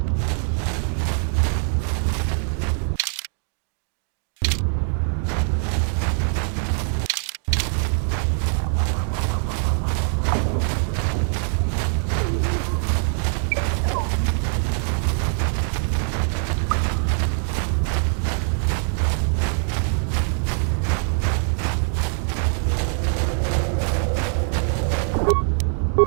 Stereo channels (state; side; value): silent; left; 57 dB below the other